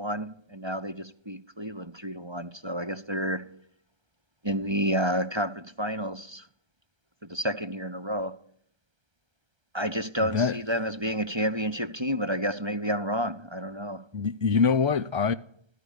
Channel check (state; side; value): late; left; 1.3 ms